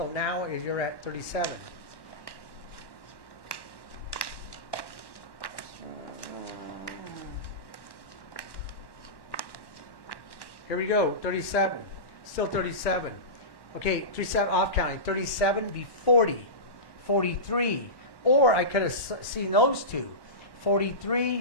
now you're at 37. Here we go, 37. Still 37. Okay, 37 off counting. 37 be 40. 43. Or I could have seen those two.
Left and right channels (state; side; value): late; right; 1.1 ms